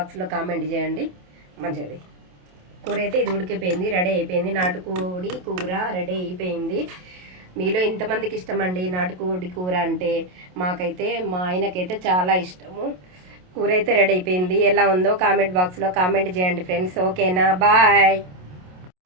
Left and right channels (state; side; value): late; left; 27 ms